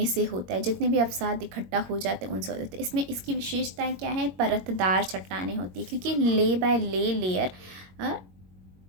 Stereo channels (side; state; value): left; late; 22 ms